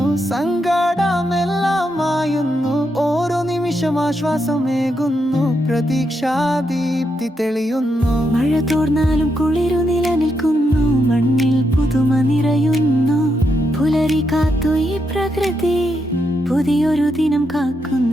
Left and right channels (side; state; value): both; normal; correlation 0.82